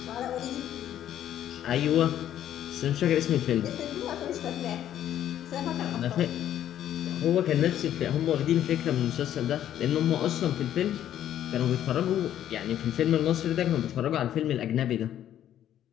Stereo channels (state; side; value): quieter; right; 11.2 dB